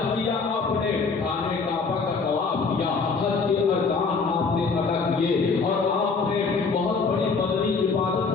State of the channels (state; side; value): quieter; right; 4.7 dB